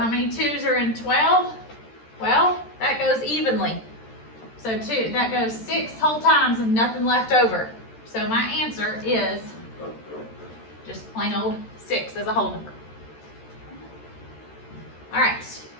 many 2's are in 12? Well, that goes evenly. So that goes 6 whole times and nothing left over. So my answer is just plain old 6 as a whole number. All right.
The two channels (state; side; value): late; right; 13 ms